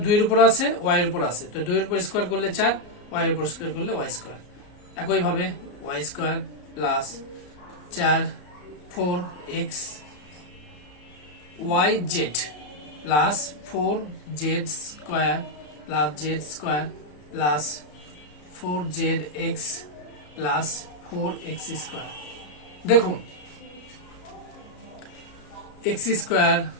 2 এর উপর আছে y এর উপর আছে, তো 2 এর উপর স্কোয়ার করলে 4, y এর উপর স্কোয়ার করলে y স্কোয়ার। একইভাবে y square plus 4 4x yz plus 4z square plus z square plus 4zx plus 4x square. দেখুন এক্স স্কোয়ার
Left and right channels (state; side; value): late; right; 34 ms